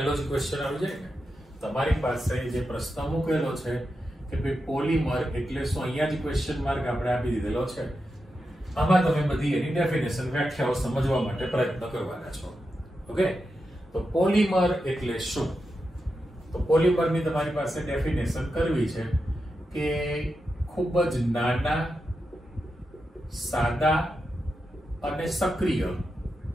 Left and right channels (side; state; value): both; normal; correlation 0.88